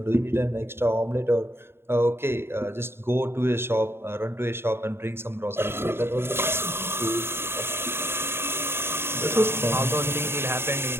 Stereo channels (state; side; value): late; left; 0.11 ms